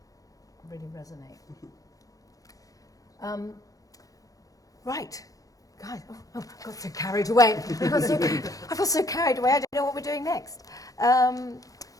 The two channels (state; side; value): late; right; 0.17 ms